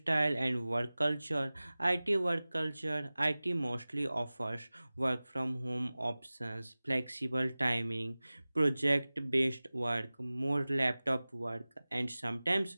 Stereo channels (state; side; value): inverted; both; correlation -0.98